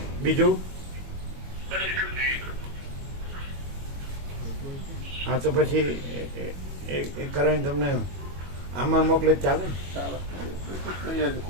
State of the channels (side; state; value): left; late; 22 ms